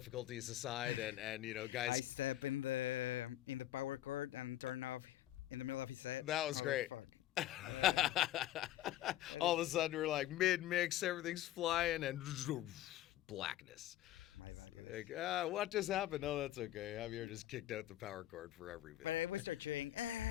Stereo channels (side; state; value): right; quieter; 14.1 dB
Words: aside, and you know, guys. I sat in the power cord and turned off in the middle of his set. That was great. All of a sudden, we're like mid-mix, everything's flying, and blackness. Like, what just happened? No, that's okay. Javier just kicked out the power cord for every bit. But it was a drink.